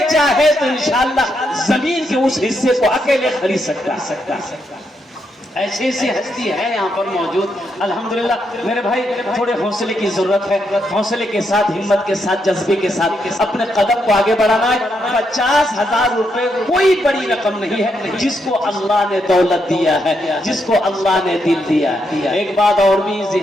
चाहे तो इंशाअल्लाह जमीन के उस हिस्से को अकेले खरीद सकता। ऐसी ऐसी हस्ती है यहाँ पर मौजूद अल्हम्दुलिल्लाह। मेरे भाई थोड़े हौसले की जरूरत है, हौसले के साथ, हिम्मत के साथ, जज्बे के साथ अपने कदम को आगे बढ़ाना है। 50,000 रुपए कोई बड़ी रकम नहीं है जिसको अल्लाह ने दौलत दिया है, जिसको अल्लाह ने दिल दिया है। एक बात और भी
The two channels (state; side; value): normal; both; correlation 0.80